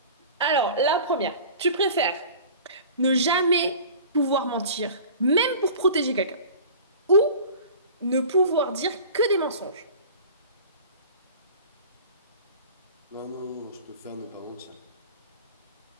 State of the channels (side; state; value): both; inverted; correlation -0.40